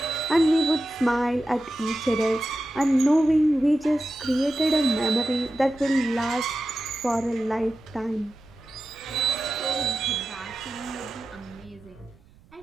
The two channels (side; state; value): right; noise; rumble, 28 dB below the sound